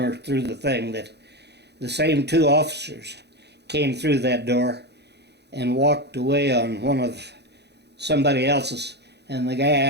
through the thing that the same 2 officers came through that door and walked away on one of somebody else's, and the guy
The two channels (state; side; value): late; left; 0.49 ms